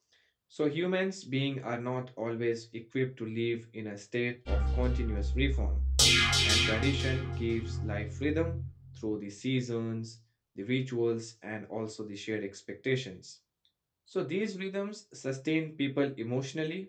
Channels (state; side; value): identical; both; correlation 1.00